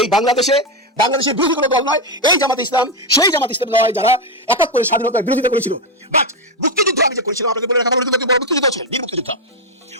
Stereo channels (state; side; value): normal; both; correlation 0.07